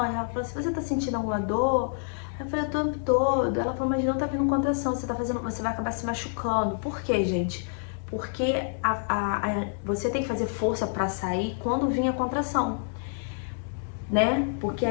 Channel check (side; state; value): right; silent; digital silence